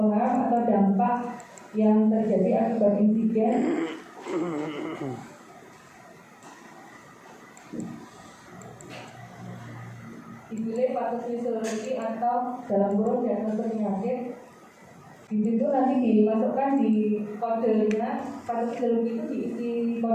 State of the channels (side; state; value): both; identical; correlation 1.00